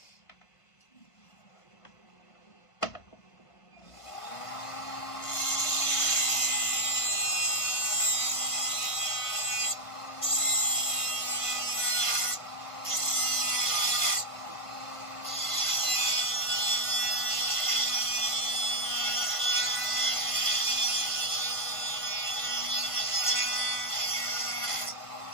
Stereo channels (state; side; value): late; right; 1.5 ms